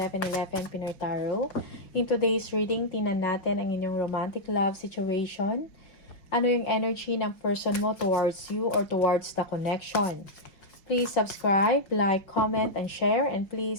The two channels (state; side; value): late; right; 5.3 ms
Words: Pinoy Tarot. In today's reading, tingnan natin ang inyong romantic love situation. Ano yung energy ng person mo towards you or towards the connection? Please subscribe, like, comment, and share. And